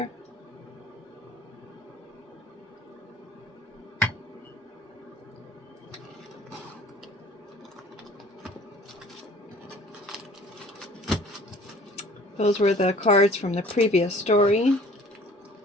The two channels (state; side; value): normal; both; correlation 0.50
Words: Those were the cards from the previous story.